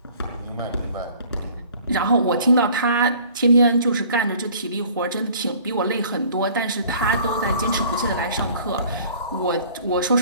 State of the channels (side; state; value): both; inverted; correlation -0.51